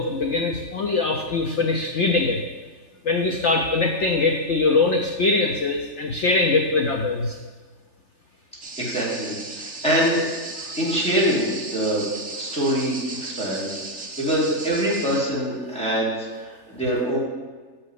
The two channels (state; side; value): late; right; 3.4 ms